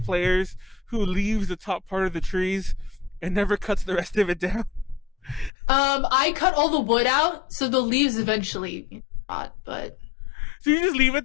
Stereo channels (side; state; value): right; drops out; at 5.5 s